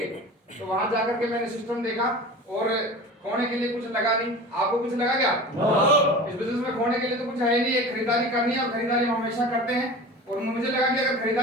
तो वहां जाकर के मैंने सिस्टम देखा और खोने के लिए कुछ लगा नहीं। आपको कुछ लगा क्या? इस बिजनेस में खोने के लिए तो कुछ है नहीं। एक खरीदारी करनी है और खरीदारी हम हमेशा करते हैं। और मुझे लगा कि अगर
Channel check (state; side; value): normal; both; correlation 0.35